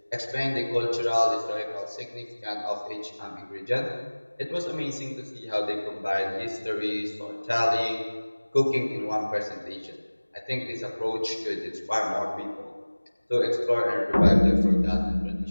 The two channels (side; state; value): both; inverted; correlation -1.00